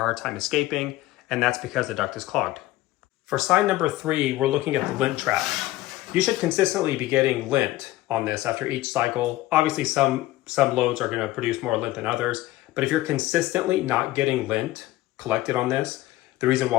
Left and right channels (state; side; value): quieter; right; 16.8 dB